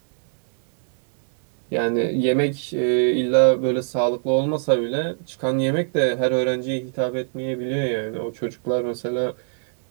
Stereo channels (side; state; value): left; silent; 64 dB below the other